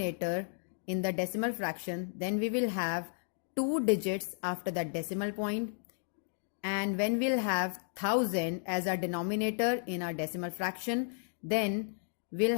in the decimal fraction, then we will have 2 digits after the decimal point. And when we'll have 1000 as our denominator in our decimal fraction, then we'll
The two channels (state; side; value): silent; right; digital silence